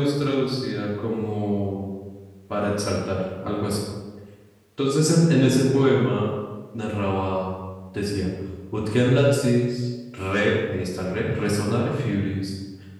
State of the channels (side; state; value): both; identical; correlation 1.00